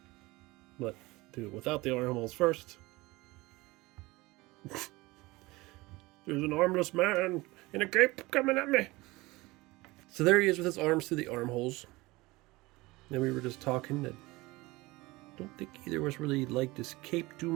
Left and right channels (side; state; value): left; quieter; 21.4 dB